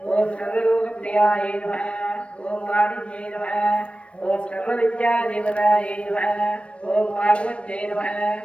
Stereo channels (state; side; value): late; right; 0.061 ms